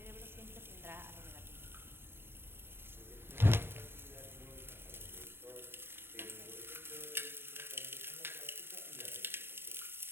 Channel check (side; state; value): left; late; 0.11 ms